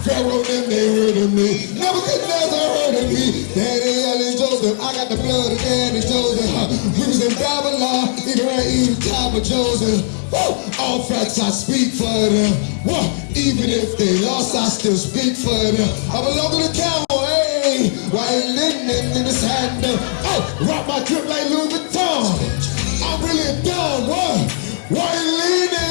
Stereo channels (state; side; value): silent; right; digital silence